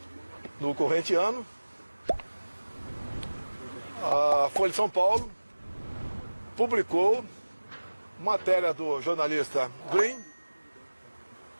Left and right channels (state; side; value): inverted; both; correlation -1.00